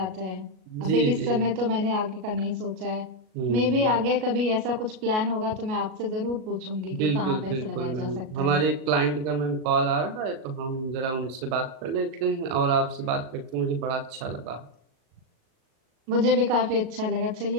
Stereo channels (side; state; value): left; late; 38 ms